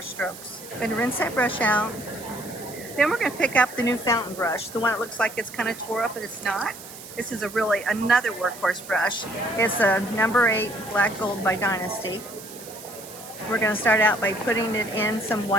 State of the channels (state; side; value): noise; right; hiss, 15 dB below the sound